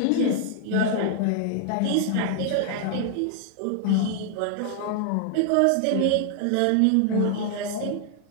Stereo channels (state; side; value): different; both; correlation 0.00